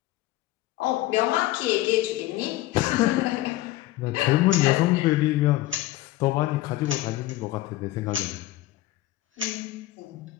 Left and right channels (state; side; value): quieter; right; 16.2 dB